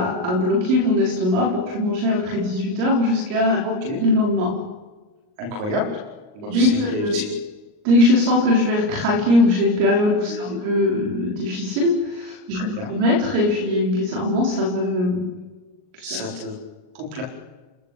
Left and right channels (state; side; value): late; left; 38 ms